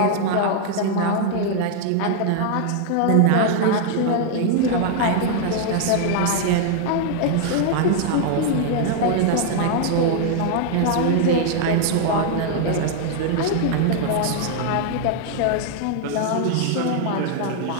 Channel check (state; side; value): different; both; correlation 0.00